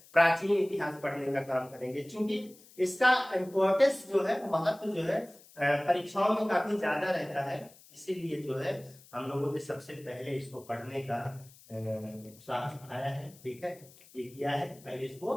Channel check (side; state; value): left; noise; hiss, 24 dB below the sound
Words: प्राचीन इतिहास पढ़ने का काम करेंगे। क्योंकि इसका इम्पोर्टेंस जो है, महत्व जो है परीक्षाओं में काफी ज्यादा रहता है, इसीलिए जो है हम लोगों ने सबसे पहले इसको पढ़ने का उत्साह आया है, ठीक है, ये किया है, पहले इसको